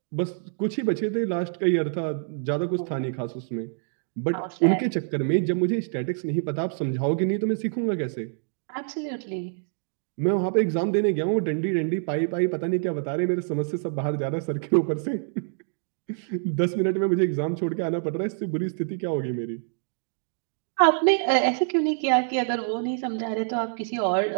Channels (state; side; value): silent; left; digital silence